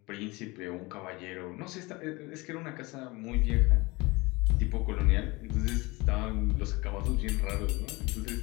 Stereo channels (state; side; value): quieter; right; 23.8 dB